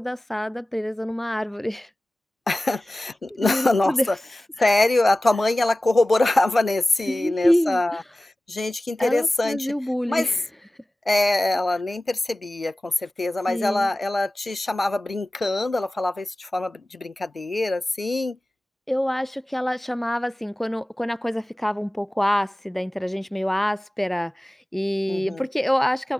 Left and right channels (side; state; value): both; normal; correlation 0.97